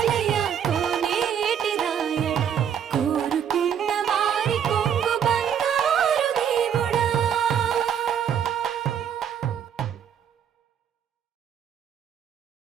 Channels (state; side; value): quieter; left; 8.6 dB